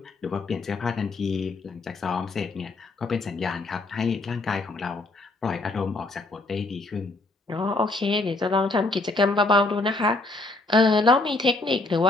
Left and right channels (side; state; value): right; quieter; 3.1 dB